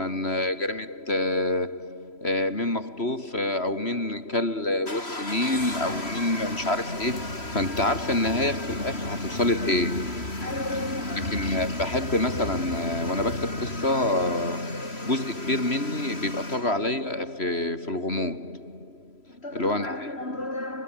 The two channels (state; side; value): late; right; 3.0 ms